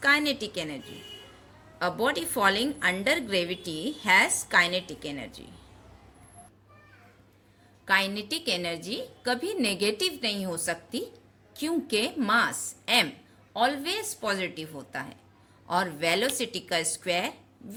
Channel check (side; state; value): both; identical; correlation 1.00